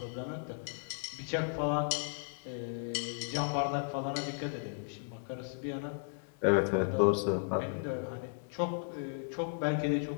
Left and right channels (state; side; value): silent; right; digital silence